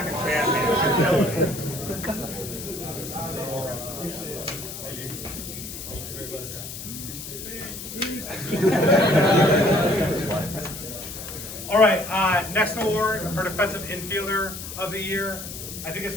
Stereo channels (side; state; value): left; noise; hiss, 9 dB below the sound